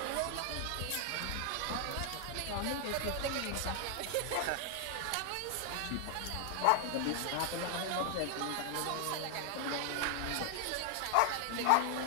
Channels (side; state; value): both; different; correlation 0.00